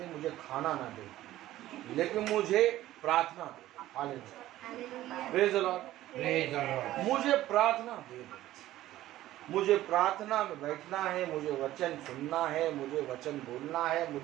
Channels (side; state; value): left; quieter; 14.8 dB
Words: मुझे खाना ना दे, लेकिन मुझे प्रार्थना दे। हालेलुया। Praise the Lord. मुझे प्रार्थना दे दो। मुझे प्रार्थना में बैठना है, मुझे वचन सुनना है, मुझे वचन बोलना है,